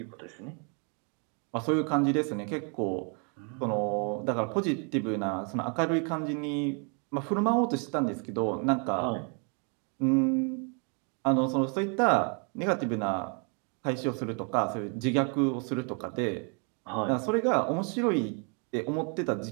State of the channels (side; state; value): left; quieter; 38.0 dB